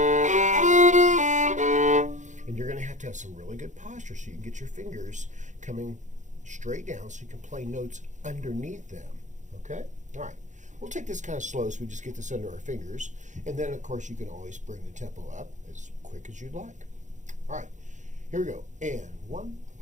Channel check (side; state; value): left; late; 0.36 ms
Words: and you're going to have some really good posture so you can get your fingers coming straight down so you can play notes underneath them. Okay? All right. We'll take this kind of slow so we just get this under our fingers. And then, of course, you can always bring the tempo up as quick as you'd like. All right. Here we go. And 1